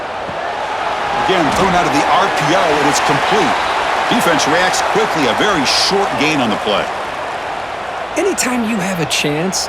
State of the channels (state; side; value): identical; both; correlation 1.00